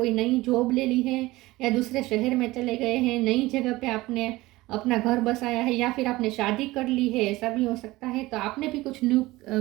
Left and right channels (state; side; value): quieter; left; 19.2 dB